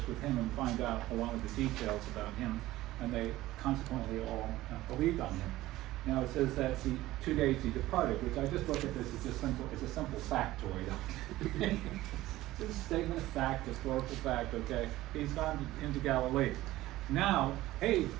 with him and find out a lot of the details about him. And they consequently all believed on him. Now it says that the 2 days he departed, which I just look at this as just simple. It's a simple factoid. It's a statement of fact, historical fact. Okay, he's gone into Galilee. Now, hey,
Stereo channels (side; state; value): left; quieter; 16.5 dB